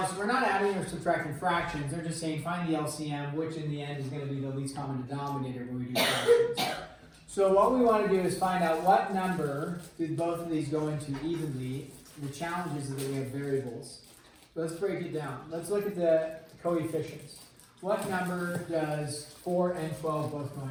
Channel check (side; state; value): both; identical; correlation 1.00